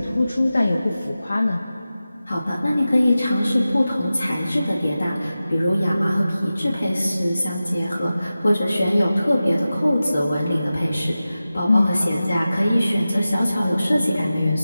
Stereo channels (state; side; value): inverted; both; correlation -0.95